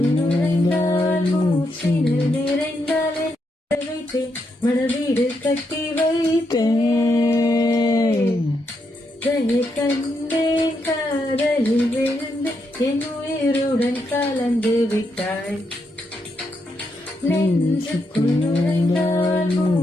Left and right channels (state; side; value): normal; both; correlation 0.80